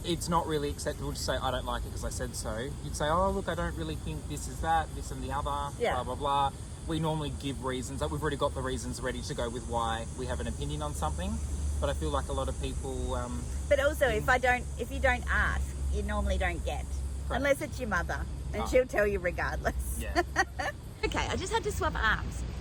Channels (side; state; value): both; identical; correlation 1.00